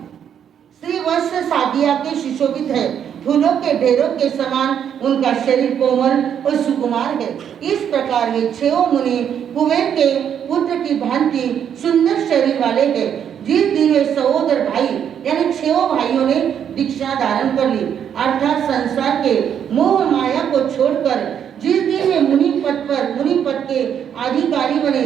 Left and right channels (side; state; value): left; quieter; 8.7 dB